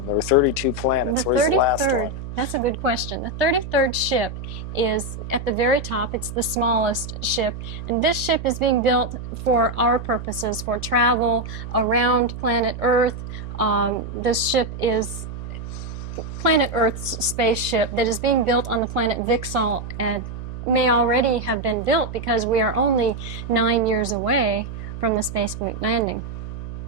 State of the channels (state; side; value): noise; right; hum, 9 dB below the sound